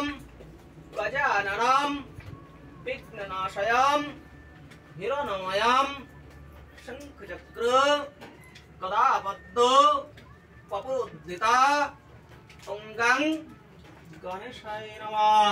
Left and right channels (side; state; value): both; identical; correlation 1.00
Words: गजाननम विघ्ननाशयम हिरण्मयम शंखचक्र गदापद्मो पपुद्धिता अंगं गणेशाय